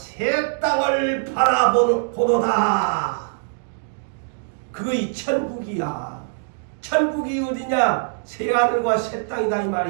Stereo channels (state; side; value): silent; left; digital silence